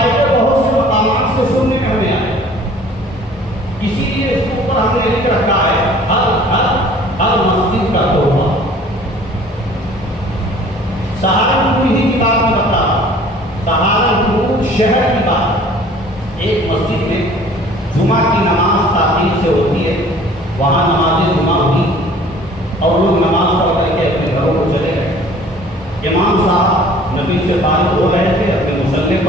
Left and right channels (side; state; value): both; normal; correlation 0.51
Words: بہت سے مقامات سے سننے میں ہمیں آئے، اسی لیے اس کے اوپر ہم نے لکھ رکھا ہے ہر مسجد کا تحفہ۔ سہارنپور ہی کی بات میں بتا رہا، سہارنپور شہر کی بات، ایک مسجد میں جمعہ کی نماز تاخیر سے ہوتی ہے، وہاں نماز جمعہ ہوئی اور لوگ نماز پڑھ کر کے اپنے گھروں کو چلے گئے۔ امام صاحب نبی سے فارغ ہو رہے تھے، اپنے مصلی